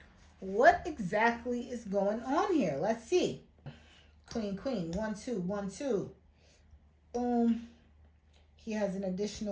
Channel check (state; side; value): identical; both; correlation 1.00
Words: exactly is going on here? Let's see. Queen, queen, 1, 2, 1, 2. Boom. He has an